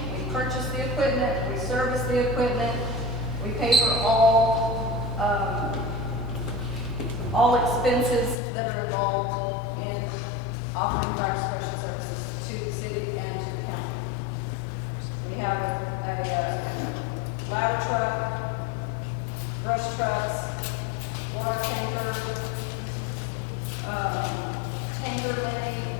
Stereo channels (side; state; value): right; drops out; at 8.3 s